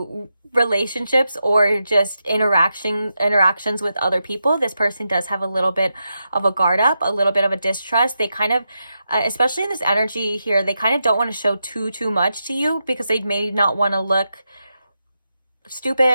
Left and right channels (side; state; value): both; inverted; correlation -0.87